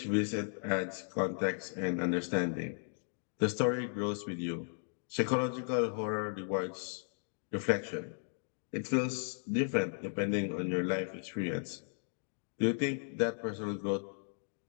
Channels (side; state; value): right; silent; digital silence